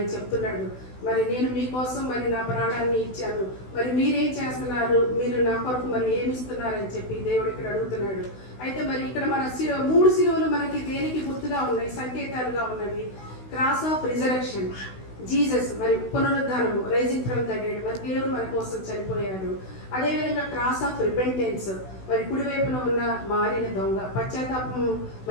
చెప్తున్నాడు, మరి నేను మీకోసం మరి నా ప్రాణాన్ని ఇచ్చాను, మరి మీరేం చేస్తున్నారు, మీరు నా కొరకు మరి ఏమి ఇస్తున్నారని చెప్పి దేవుడు ఇక్కడ అడుగుతున్నాడు. అయితే మరి ఇక్కడ మన 3 సిలువలు మనకి దేనికి గుర్తుగా ఉన్నాయి, సంకేతాలుగా ఉన్నవి. క్రాస్ ఆఫ్ రిజరెక్షన్, జీసస్ మరి పునరుద్ధానము, రైజింగ్ ఫ్రమ్ ద డెడ్, మరి దేవుడు మన కోసం చనిపోయాడు. అదేవిధంగా క్రాస్ ఆఫ్ రిపెంటెన్స్, మరి కుడివైపున ఉన్న మారిన దొంగ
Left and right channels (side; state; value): right; late; 16 ms